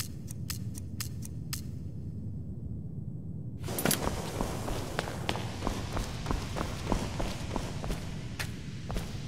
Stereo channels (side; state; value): both; identical; correlation 1.00